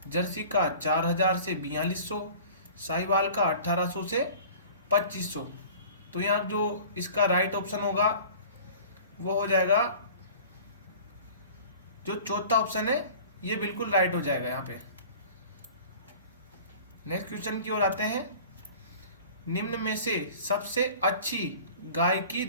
जर्सी का 4000 से 4200। साहिवाल का 1800 से 2500। तो यहाँ जो इसका राइट ऑप्शन होगा वो हो जाएगा जो चौथा ऑप्शन है, ये बिल्कुल राइट हो जाएगा यहाँ पे। नेक्स्ट क्वेश्चन की ओर आते हैं। निम्न में से सबसे अच्छी गाय की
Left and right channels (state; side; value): inverted; both; correlation -0.44